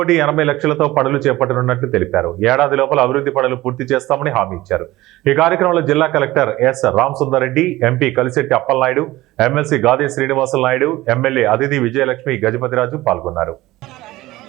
పనులు చేపట్టనున్నట్లు తెలిపారు. ఏడాది లోపల అభివృద్ధి పనులు పూర్తి చేస్తామని హామీ ఇచ్చారు. ఈ కార్యక్రమంలో జిల్లా collector S Ramasundar Reddy, MP Kalisetti Appalanaidu, MLC Gade Srinivasulu Naidu, MLA Aditi Vijayalakshmi Gajapathiraju పాల్గొన్నారు.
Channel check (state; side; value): quieter; left; 17.8 dB